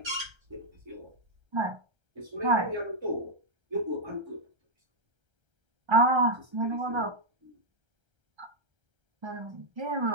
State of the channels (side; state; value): left; late; 1.3 ms